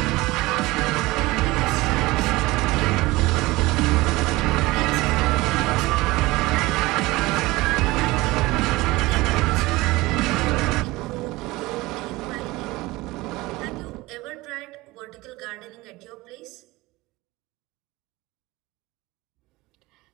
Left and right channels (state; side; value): quieter; left; 20.5 dB